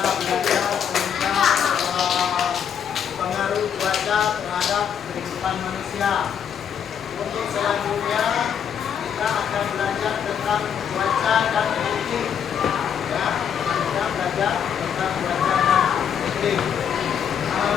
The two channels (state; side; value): quieter; right; 8.1 dB